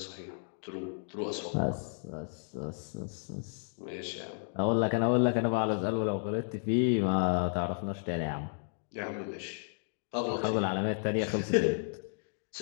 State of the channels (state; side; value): silent; right; 56 dB below the other